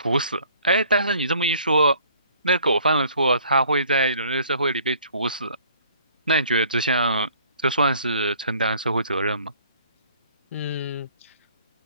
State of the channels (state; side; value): inverted; both; correlation -0.57